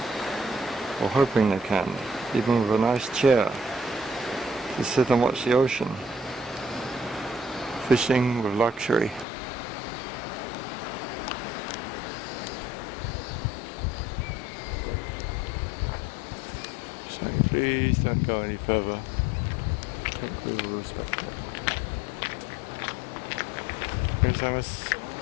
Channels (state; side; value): drops out; right; at 9.2 s